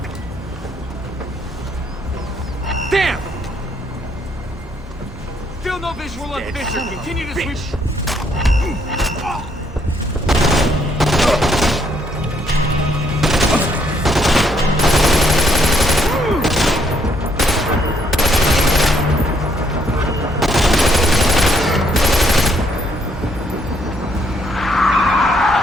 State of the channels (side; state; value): both; normal; correlation 0.71